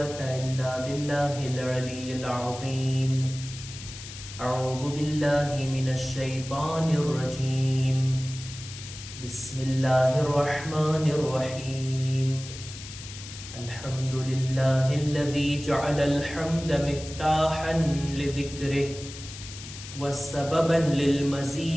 إلا بالله العلي العظيم. أعوذ بالله من الشيطان الرجيم. بسم الله الرحمن الرحيم. الحمد لله الذي جعل الحمد مفتاحا لذكره وسببا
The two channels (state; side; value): noise; left; hiss, 13 dB below the sound